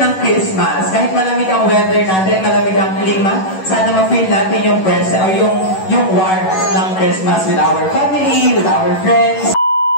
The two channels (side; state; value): right; late; 11 ms